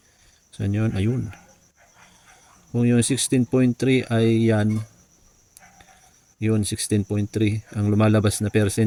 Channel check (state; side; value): identical; both; correlation 1.00